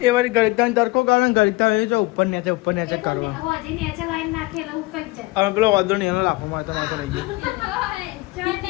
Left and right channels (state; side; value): quieter; right; 23.2 dB